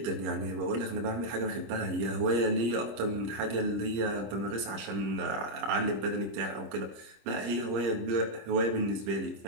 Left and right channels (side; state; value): left; late; 25 ms